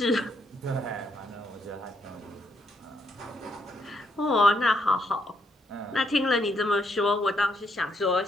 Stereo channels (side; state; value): both; normal; correlation 0.75